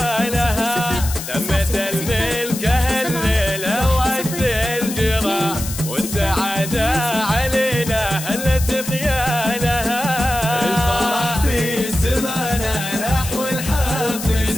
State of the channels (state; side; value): noise; left; hiss, 8 dB below the sound